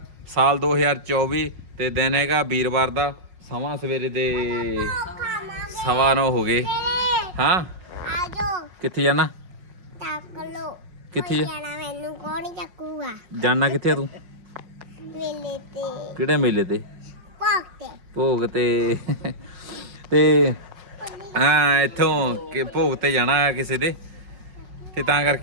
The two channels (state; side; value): late; left; 5.5 ms